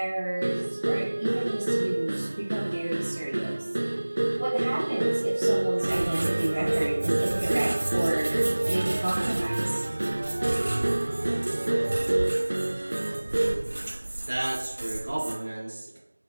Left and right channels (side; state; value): both; inverted; correlation -1.00